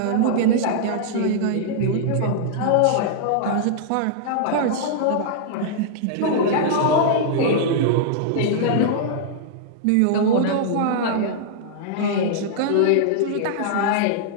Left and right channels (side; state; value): both; different; correlation -0.02